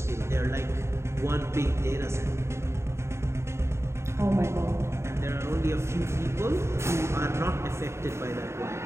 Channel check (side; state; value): left; late; 0.13 ms